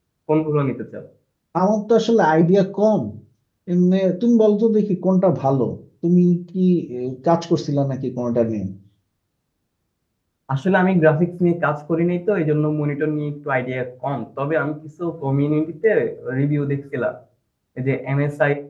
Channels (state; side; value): identical; both; correlation 1.00